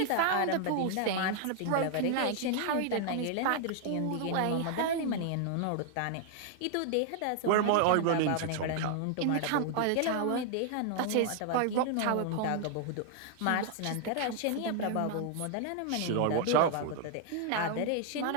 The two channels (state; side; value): different; both; correlation 0.00